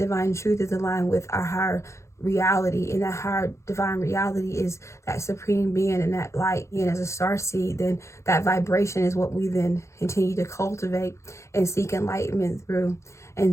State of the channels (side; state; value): right; late; 0.14 ms